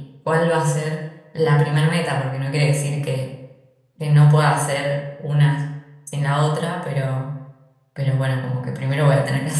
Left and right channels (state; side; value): identical; both; correlation 1.00